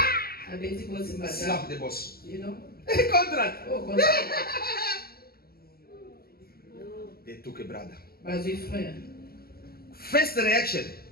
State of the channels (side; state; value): right; late; 0.45 ms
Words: Slap the boss. You know? Contract. Oh, contrat. They took a brother. Bazui frère. First reaction.